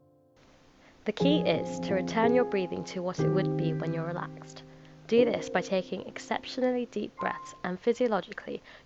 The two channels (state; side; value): identical; both; correlation 1.00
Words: The key is to return your breathing to what it would be when you're relaxed. Do this by taking exceptionally deep breaths, and physiologically,